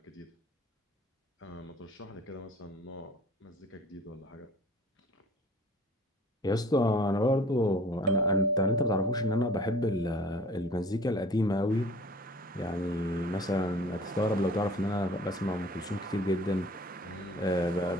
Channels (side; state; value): both; normal; correlation 0.49